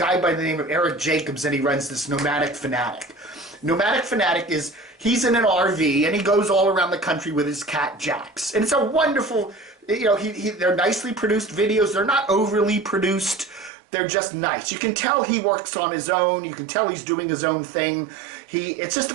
by the name of Eric Jacobs, and he runs this Nomadic Fanatic. Nomadic Fanatic he's in an RV, and he goes all around the country with his cat Jax. And it's a wonderful, they're nicely produced videos. They're not overly produced. They're just nice. You can tell he works on his own. You can tell he's doing his own thing.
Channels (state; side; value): drops out; left; at 13.7 s